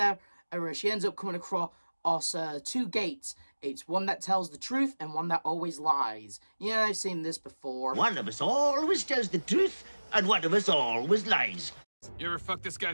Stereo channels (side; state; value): both; inverted; correlation -1.00